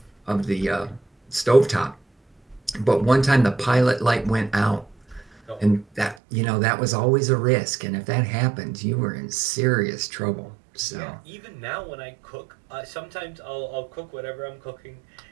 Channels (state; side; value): drops out; left; at 6.2 s